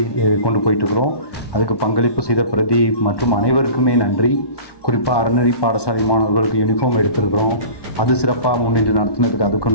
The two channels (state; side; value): late; right; 1.2 ms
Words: கொண்டு போயிட்டுருக்குறோம். அதுக்கு பங்களிப்பு செய்த பிரதீப் மற்றும் அனைவருக்குமே நன்றி. குறிப்பாக அறநெறி பாடசாலை மாணவர்களுக்கு யூனிஃபார்ம் எடுத்திருக்கிறோம், அது சிறப்பாக முன்னின்று நடத்தினதுக்கு